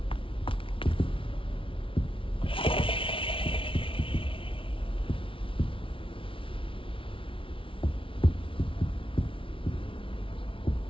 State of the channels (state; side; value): late; right; 0.25 ms